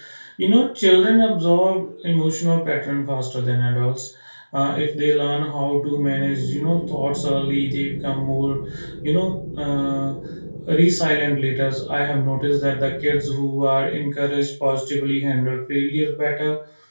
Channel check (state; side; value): inverted; both; correlation -1.00